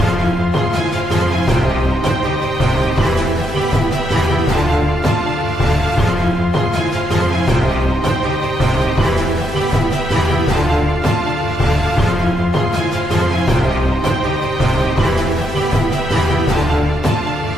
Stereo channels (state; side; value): normal; both; correlation 0.78